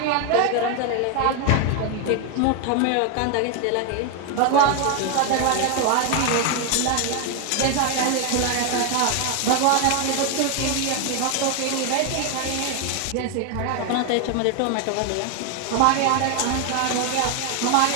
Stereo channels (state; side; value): different; both; correlation 0.01